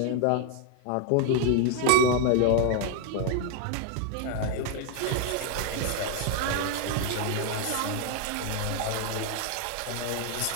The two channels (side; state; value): both; different; correlation 0.00